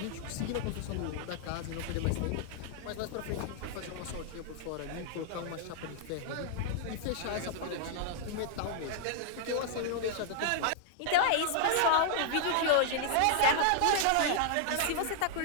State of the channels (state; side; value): different; both; correlation -0.01